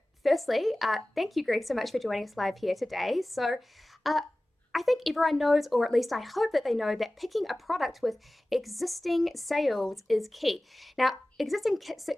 firstly, thank you, Greg, so much for joining us live here today. So I think everyone knows, or at least I hope that they know, that picking a product with existing sales is key. Now, existing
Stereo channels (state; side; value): normal; both; correlation 0.97